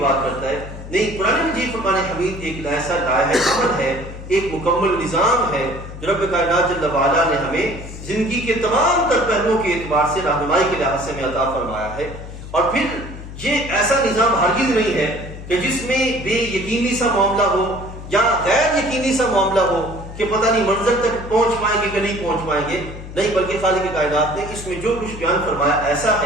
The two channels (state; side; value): noise; left; hum, 12 dB below the sound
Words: کرتا ہے، نہیں، قرآن مجید فرقان حمید ایک ایسا عمل ہے، ایک مکمل نظام ہے جو رب کائنات جل وعلا نے ہمیں زندگی کے تمام تر پہلوؤں کے اعتبار سے رہنمائی کے لحاظ سے ہمیں عطا فرمایا ہے۔ اور پھر یہ ایسا نظام ہرگز نہیں ہے کہ جس میں بے یقینی سا معاملہ ہو یا غیر یقینی سا معاملہ ہو کہ پتہ نہیں منظر تک پہنچ پائیں گے کہ نہیں پہنچ پائیں گے، نہیں، بلکہ خالق کائنات نے اس میں جو کچھ بیان فرمایا ایسا